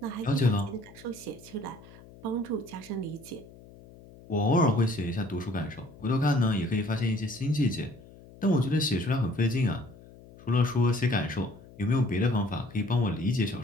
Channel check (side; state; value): left; noise; hum, 21 dB below the sound